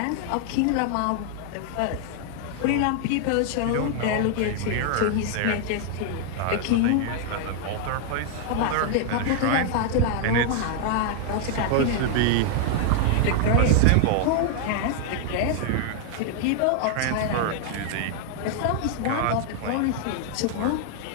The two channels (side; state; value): both; different; correlation 0.00